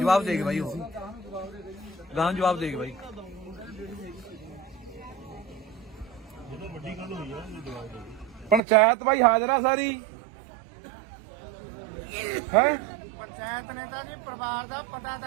ਦੇ ਕੇ ਬਾਈ, ਉਹ ਗਾਂ ਜਵਾਬ ਦੇ ਕੇ ਬਾਈ। ਪੰਚਾਇਤ ਬਾਈ ਹਾਜ਼ਰ ਆ ਸਾਰੀ ਹੈ। ਪੰਚਾਇਤ ਨੇ ਤਾਂ ਜੀ ਪਰਿਵਾਰ ਦਾ ਪਤਾ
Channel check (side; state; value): left; drops out; at 8.6 s